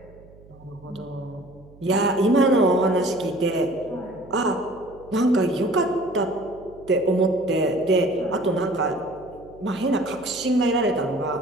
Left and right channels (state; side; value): noise; right; hum, 23 dB below the sound